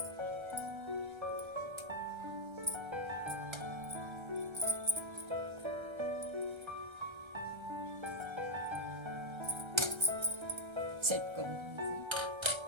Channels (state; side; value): late; left; 1.3 ms